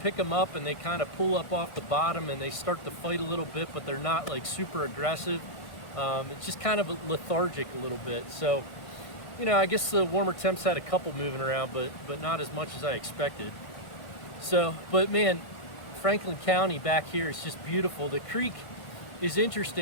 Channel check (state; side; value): late; right; 1.5 ms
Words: them up and they kind of pull up off the bottom and they start to fight a little bit, but they're not like super aggressive. It's just kind of lethargic a little bit. So, you know, I guess the warmer temps had a couple moving around, but not as much as I expected. So, but man, Franklin County back here is just beautiful. The creek is